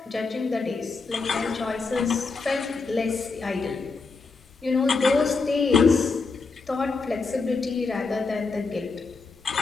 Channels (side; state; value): right; quieter; 4.3 dB